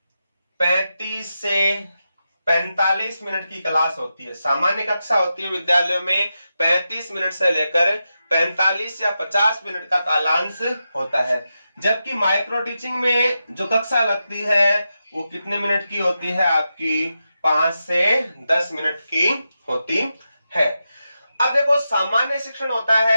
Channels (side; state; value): both; inverted; correlation -0.89